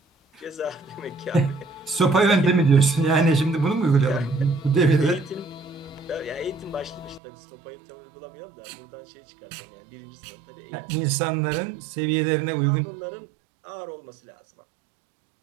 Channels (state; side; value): drops out; left; at 7.2 s